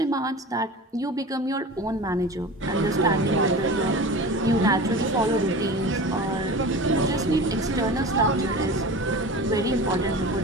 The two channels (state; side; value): normal; both; correlation 0.34